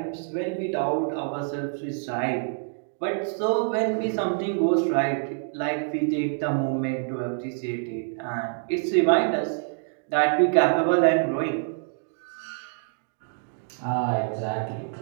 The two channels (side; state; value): left; silent; digital silence